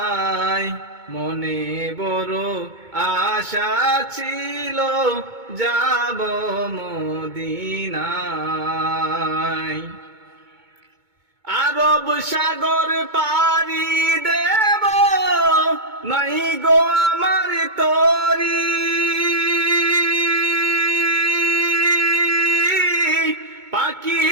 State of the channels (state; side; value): late; left; 2.2 ms